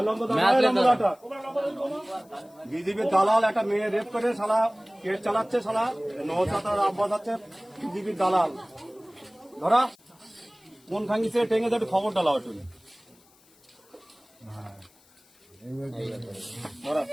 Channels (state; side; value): noise; left; hiss, 30 dB below the sound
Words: কথা ধরো, বিজেপির দালাল একটা মেয়ে রেপ করে শালা কেস চালাচ্ছে, শালা নৌসাতার আব্বাস আছে বিজেপির দালাল। ধরা কোন খাঙ্গিছে টেঙ্গে একটু খবর ডালাও একটু। ধরা